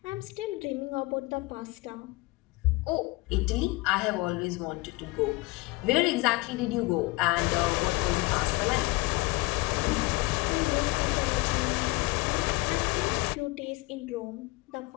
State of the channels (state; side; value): quieter; right; 23.5 dB